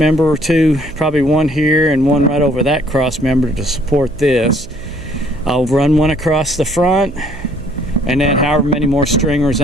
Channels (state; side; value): noise; right; hum, 17 dB below the sound